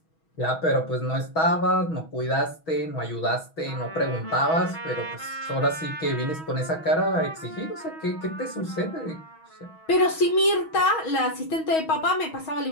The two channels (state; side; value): late; right; 6.2 ms